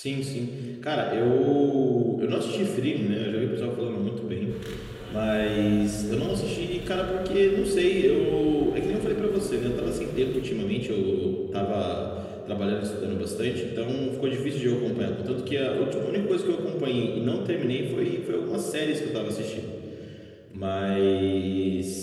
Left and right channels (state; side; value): identical; both; correlation 1.00